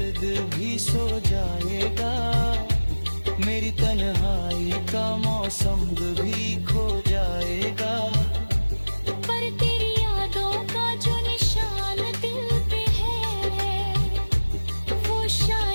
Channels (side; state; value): both; inverted; correlation -1.00